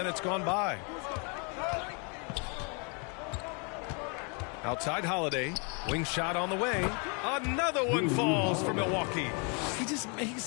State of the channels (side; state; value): right; quieter; 35.3 dB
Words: gone by. Outside Holiday. Wing shot on the way. Another one falls for Milwaukee. He just